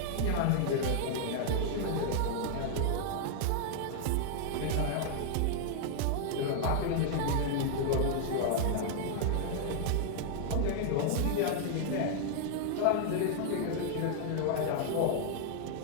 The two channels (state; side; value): different; both; correlation 0.00